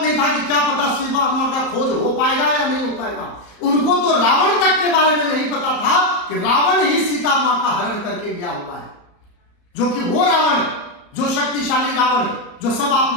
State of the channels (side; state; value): right; late; 34 ms